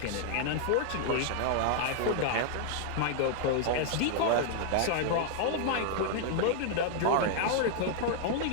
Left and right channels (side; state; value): both; different; correlation -0.01